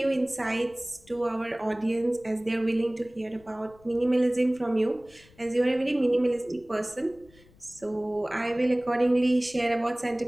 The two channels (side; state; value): left; noise; rumble, 27 dB below the sound